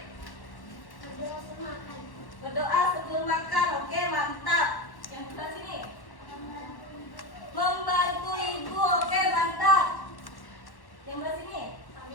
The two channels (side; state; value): right; late; 1.1 ms